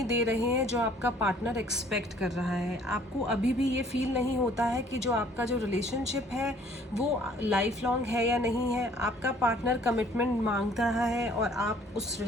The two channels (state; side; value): normal; both; correlation 0.57